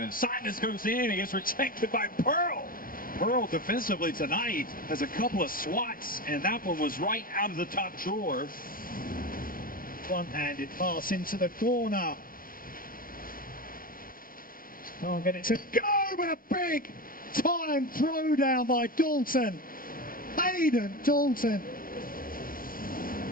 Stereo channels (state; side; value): late; right; 0.41 ms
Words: and Sinus goes in. He gets rejected by Pearl. Pearl defensively tonight has a couple of swats, and that one was right out of the top drawer. Front-handed pass into the corner. Can't get it to go, but a big time throwdown by Dalton. Hayden Dalton.